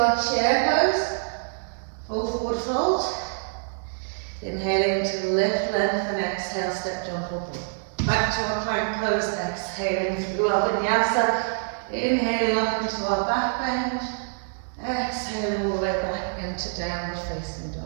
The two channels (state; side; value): silent; left; digital silence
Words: chair pose. Full forward fold. Inhaling to lift, lengthen, exhale, step, jump up. Back to our plank pose. Exhaling through our vinyasa. Inhaling up into our back bend, exhaling all the way back into downward facing